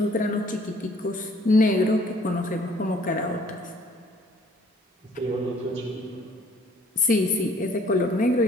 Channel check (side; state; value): both; normal; correlation 0.58